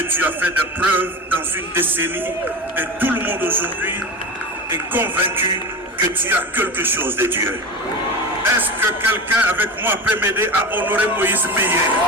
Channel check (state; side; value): normal; both; correlation 0.27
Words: tu as fait des preuves dans une décennie et tout le monde aujourd'hui est convaincu que tu as quelque chose de Dieu. Est-ce que quelqu'un avec moi peut m'aider à honorer Moïse Mbiye?